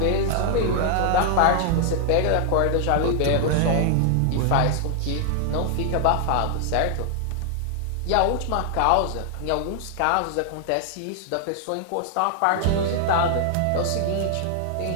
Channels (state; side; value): different; both; correlation 0.00